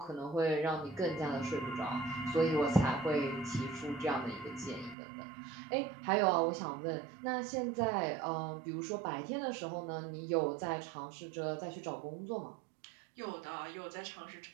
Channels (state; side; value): drops out; left; at 5.0 s